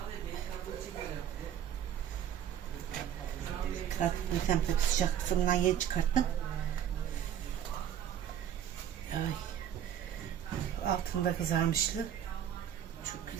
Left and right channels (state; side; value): quieter; left; 9.9 dB